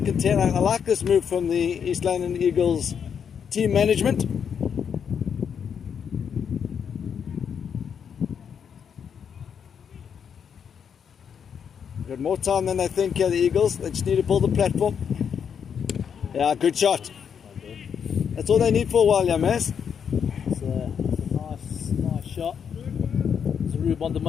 10. I like this move from the East London Eagles team management. Got more time than they think here, the Eagles. They just need to build the platform. Yeah, good shot. That's all they need for a while, yeah, Maz. It's a nice shot. It's a Rube on the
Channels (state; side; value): quieter; right; 7.4 dB